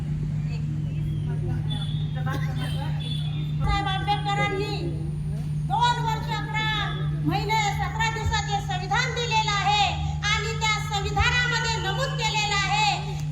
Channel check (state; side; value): identical; both; correlation 1.00